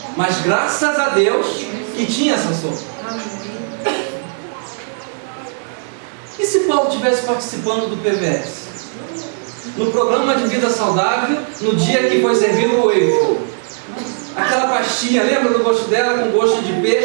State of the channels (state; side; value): silent; left; digital silence